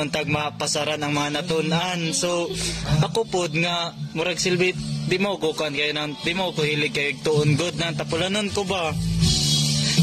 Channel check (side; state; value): both; identical; correlation 1.00